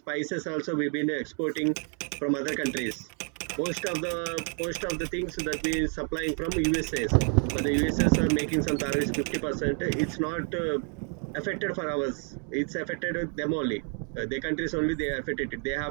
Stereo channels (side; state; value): left; quieter; 39.1 dB